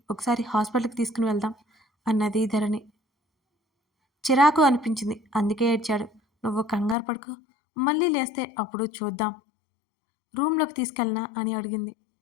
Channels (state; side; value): drops out; right; at 7.0 s